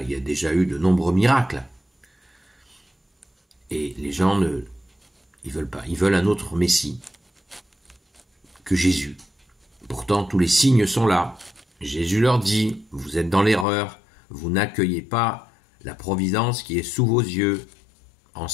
il y a déjà eu de nombreux miracles. Et les gens ils veulent pas. Ils veulent un autre Messie que Jésus. Pourtant, tous les signes sont là. Jésus leur dit, vous êtes dans l'erreur, vous n'accueillez pas la providence qui est sous vos yeux, en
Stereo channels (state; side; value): drops out; right; at 13.7 s